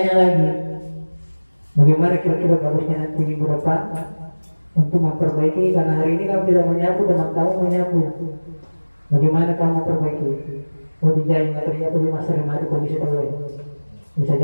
lagi, bagaimana kira-kira bagusnya nanti minggu depan untuk memperbaiki, karena hari ini kamu tidak menyapu, teman kamu menyapu. Bagaimana kamu memperbaiki? Oh, dijahit ternyata di masa remati kondisi terbaik. Bisa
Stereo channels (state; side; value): inverted; both; correlation -1.00